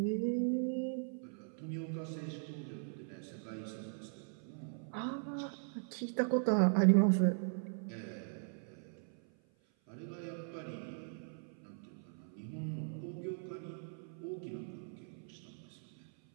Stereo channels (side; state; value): left; silent; 51 dB below the other